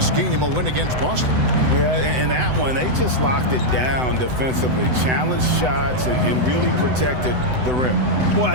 game, a win against Boston. Yeah, and that one, they just locked it down defensively, challenged shots, and really protected the rim. Boy, I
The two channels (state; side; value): late; left; 7.9 ms